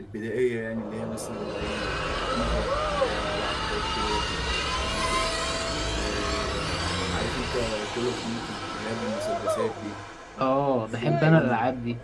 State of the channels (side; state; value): both; identical; correlation 1.00